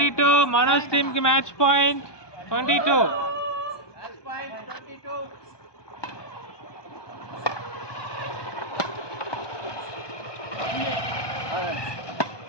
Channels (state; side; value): late; right; 1.2 ms